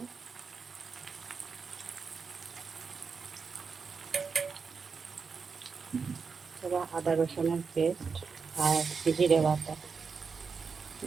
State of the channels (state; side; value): quieter; left; 5.3 dB